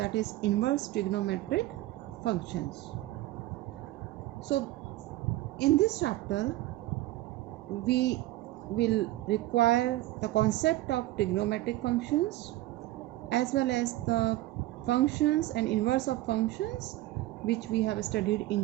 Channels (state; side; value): quieter; left; 16.9 dB